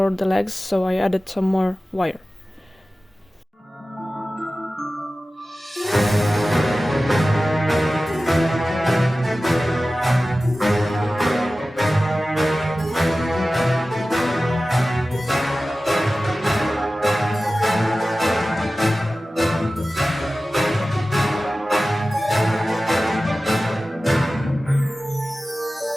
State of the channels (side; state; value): both; normal; correlation 0.96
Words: the legs, so I added some more wire.